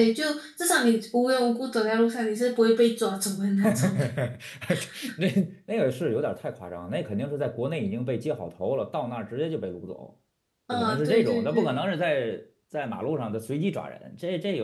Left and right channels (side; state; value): both; identical; correlation 1.00